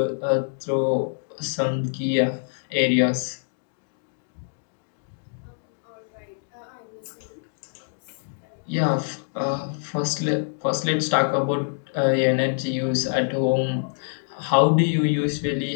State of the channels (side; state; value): right; silent; digital silence